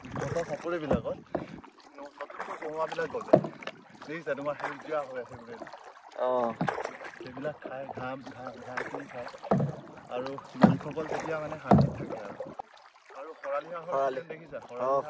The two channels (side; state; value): both; identical; correlation 1.00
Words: চাপৰিবিলাকত নতুনকৈ কমোৱাবিলাক গজে, দেখিছা তোমাৰ সেউজীয়া হৈ আছে গোটেই। সেইবিলাক খায়, ঘাঁহ খায় আৰু মালিকসকল তেতিয়া মানে শান্তিত থাকে। আৰু খৰালি দেখিছা,